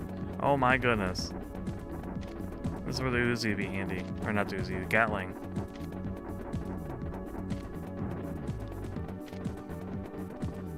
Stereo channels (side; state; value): both; identical; correlation 1.00